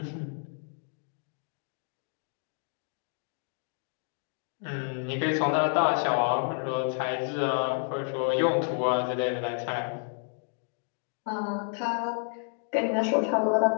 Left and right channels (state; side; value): silent; right; 58 dB below the other